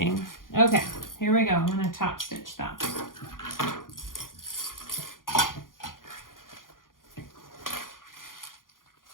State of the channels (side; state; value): right; late; 0.90 ms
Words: Okay, here we go. I'm gonna top stitch that.